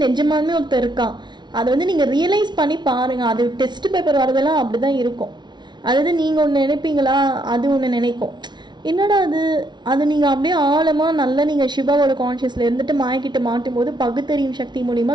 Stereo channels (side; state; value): left; late; 0.21 ms